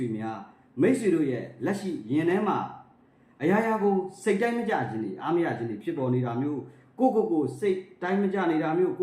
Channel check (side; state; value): both; identical; correlation 1.00